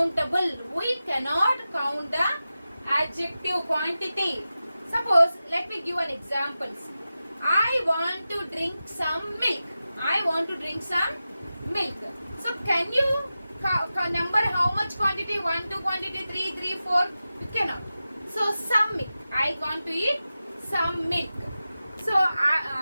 We cannot count the adjective quantity. Suppose let me give an example. I want to drink some milk. I want to drink some milk. So can you number how much quantity? 1, 2 quantity, 3, 3, 4. You cannot. So some milk. I want to eat some milk. So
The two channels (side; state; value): both; inverted; correlation -0.93